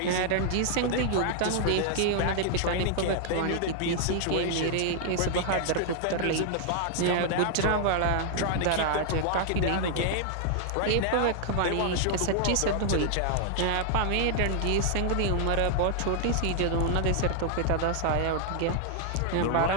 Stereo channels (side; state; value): both; different; correlation 0.00